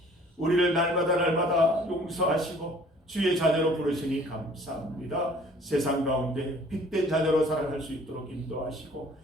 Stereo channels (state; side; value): normal; both; correlation 0.54